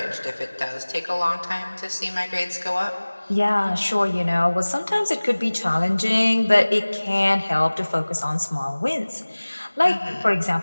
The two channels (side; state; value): both; inverted; correlation -1.00